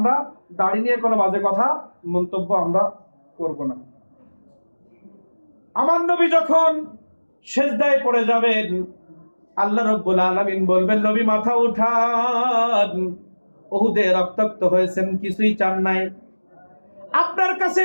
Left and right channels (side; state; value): both; inverted; correlation -1.00